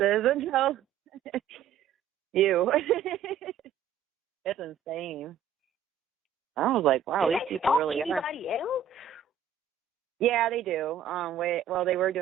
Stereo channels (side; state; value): left; quieter; 7.9 dB